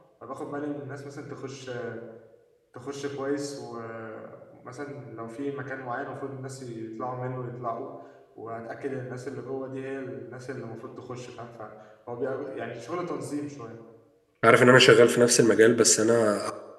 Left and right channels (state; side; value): identical; both; correlation 1.00